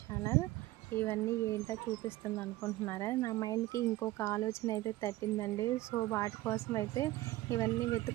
channel. ఇవన్నీ ఏంటో చూపిస్తుంది అనుకుంటున్నారా? నా మైండ్కి ఇంకొక ఆలోచన అయితే తట్టిందండి. సో వాటి కోసం అయితే ఇవన్నీ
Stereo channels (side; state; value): left; quieter; 17.2 dB